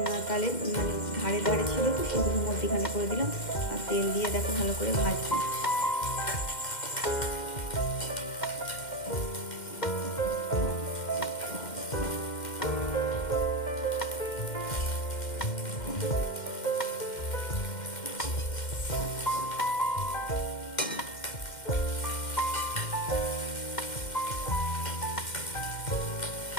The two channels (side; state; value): right; late; 2.1 ms